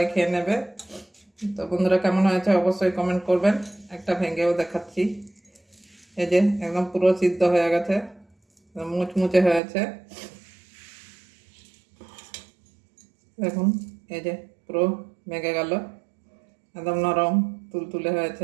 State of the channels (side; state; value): left; drops out; at 9.6 s